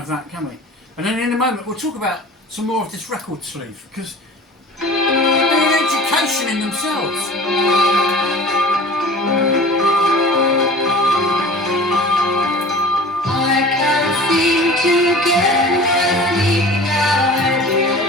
that, can we? And then in a moment we'll talk about some more of this record sleeve, because they're an education in themselves. I can't seem to get my sleep now and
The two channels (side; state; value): both; normal; correlation 0.41